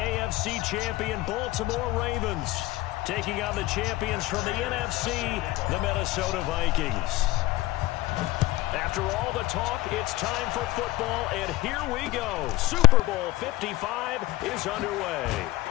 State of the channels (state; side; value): quieter; right; 17.8 dB